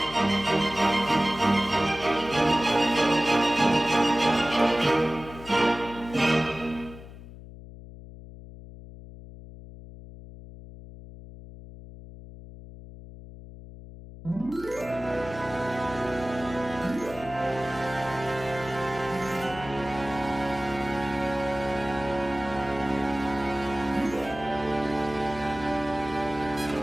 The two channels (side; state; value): left; noise; hum, 15 dB below the sound